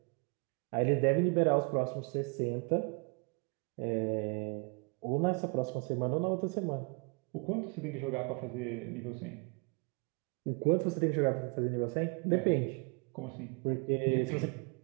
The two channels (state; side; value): quieter; left; 34.9 dB